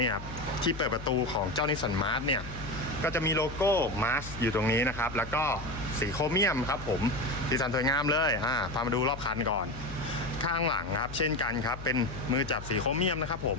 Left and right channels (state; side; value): noise; left; hum, 12 dB below the sound